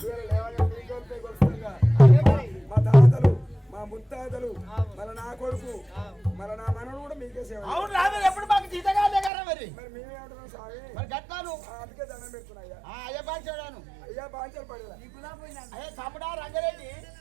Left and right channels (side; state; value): left; drops out; at 9.3 s